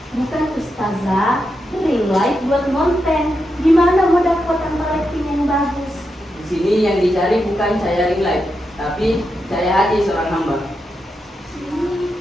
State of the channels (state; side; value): normal; both; correlation 0.86